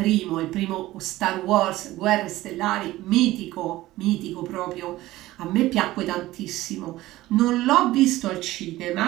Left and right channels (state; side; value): quieter; left; 16.8 dB